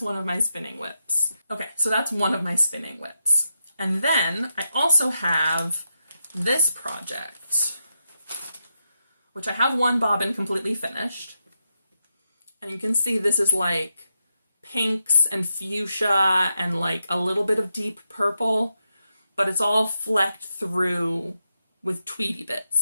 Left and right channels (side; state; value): both; inverted; correlation -0.85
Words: one of my spinning whips. Okay, so that's one of my spinning whips. And then I also have this project, which I have one bobbin completely finished. And you can see this is like pinks and fuchsia and like a little bit of deep purple, but it's all flecked through with Tweety